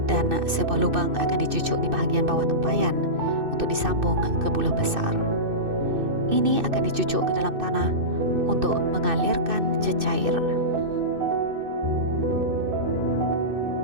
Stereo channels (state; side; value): late; left; 2.6 ms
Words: dan sebuah lubang akan dicucuk di bahagian bawah tempayan untuk disambung ke bulah besar. Ini akan dicucuk ke dalam tanah untuk mengalirkan cecair.